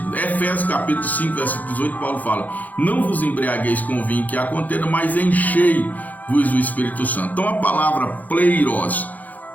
Efésios capítulo 5, versículo 18, Paulo fala: não vos embriagueis com o vinho que há contenda, mas enchei-vos do Espírito Santo. Então a palavra pleiros,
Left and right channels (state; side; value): late; right; 0.080 ms